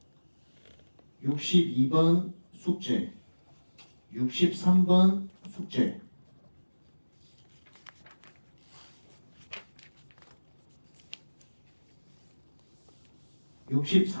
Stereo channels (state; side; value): inverted; both; correlation -1.00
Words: 62번 숙제, 63번 숙제.